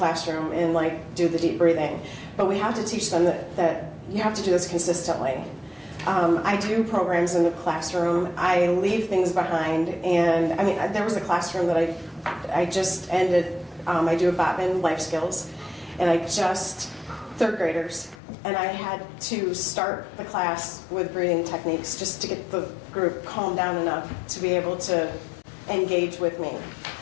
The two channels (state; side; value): drops out; right; at 18.2 s